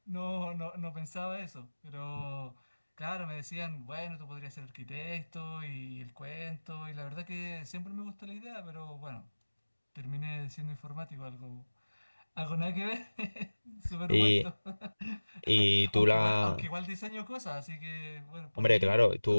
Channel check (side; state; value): both; inverted; correlation -1.00